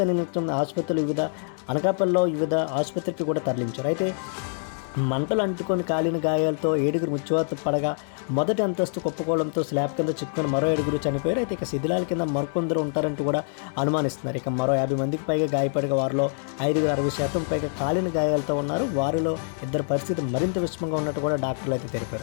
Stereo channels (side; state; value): right; silent; 61 dB below the other